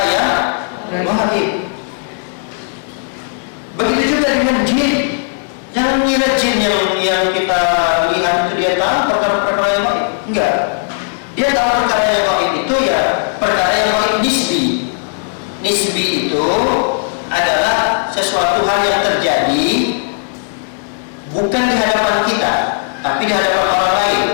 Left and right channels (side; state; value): right; silent; digital silence